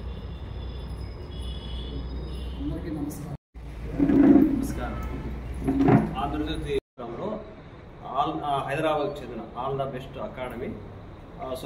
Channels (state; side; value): identical; both; correlation 1.00